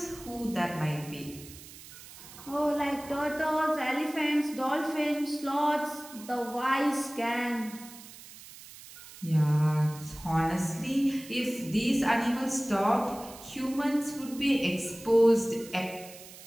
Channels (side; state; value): right; noise; hiss, 17 dB below the sound